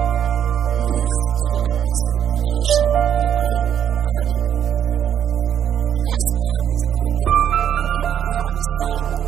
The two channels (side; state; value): left; quieter; 9.4 dB